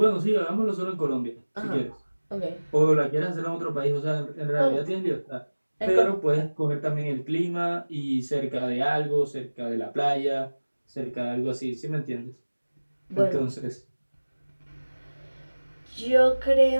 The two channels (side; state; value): both; inverted; correlation -1.00